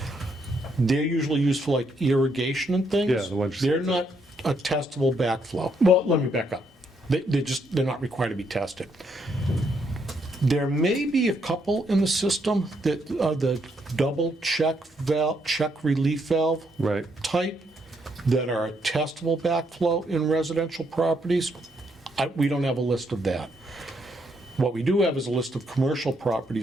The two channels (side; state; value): both; normal; correlation 0.75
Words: They're usually used for like irrigation and things. Yeah, the ones you They're said. not a testable backflow. Well, let me back up. They're not required to be tested. There may be a couple in the system that are the double check relief valve Right. type that are a testable backflow in residential properties. We don't have a list of that. What we do have is a list of commercial